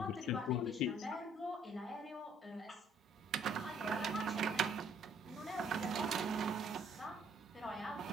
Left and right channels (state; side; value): normal; both; correlation 0.63